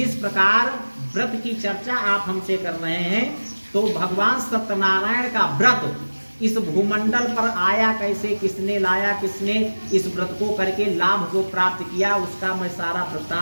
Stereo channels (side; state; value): both; inverted; correlation -1.00